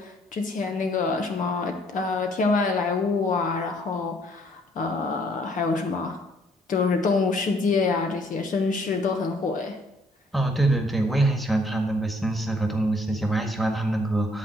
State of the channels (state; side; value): normal; both; correlation 0.64